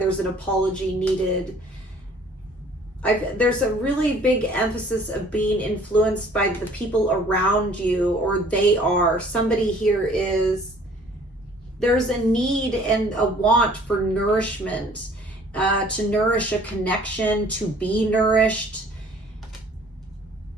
an apology needed. There's a really big emphasis of being influenced by the people around you, or they are. Somebody here is, there's a need and a want for nourishment, to nourish a connection, to be nourished.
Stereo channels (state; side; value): normal; both; correlation 0.54